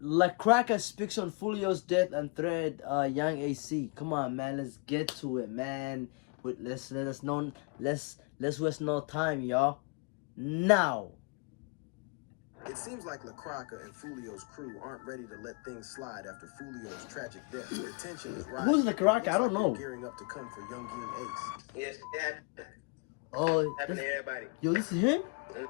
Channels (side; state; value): right; quieter; 30.9 dB